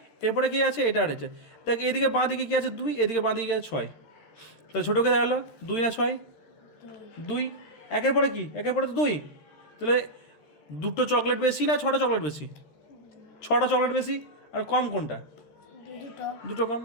এরপরে কী আছে, এটা আর এটা, দেখ এদিকে বাঁ দিকে কী আছে, 2, এদিকে বাঁ দিকে আছে 6। তাহলে ছোটোকে দেখালো 2 না 6, 2। একের পরে কি, একের পরে তো 2। তাহলে 2টো চকলেট বেশি না 6টা চকলেট বেশি, 6টা চকলেট বেশি, আর কম কোনটা, 2টো কম।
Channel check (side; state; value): right; late; 14 ms